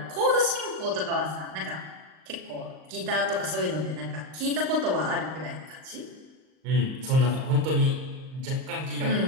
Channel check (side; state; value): left; late; 38 ms